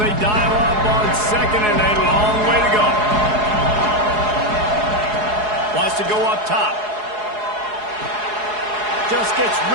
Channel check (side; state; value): left; late; 4.7 ms